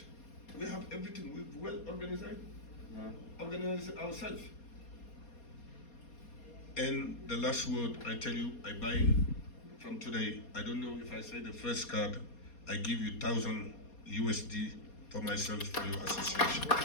We have everything. We've well organized. Organize it ourselves. And the last word I tell you, I buy from today. I don't know if I say the first card, I give you 1,000 USD for myself for your association.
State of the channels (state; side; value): late; right; 4.2 ms